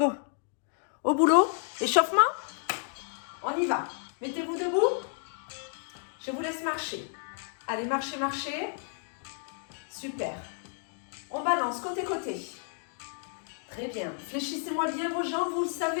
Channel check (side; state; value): right; silent; 57 dB below the other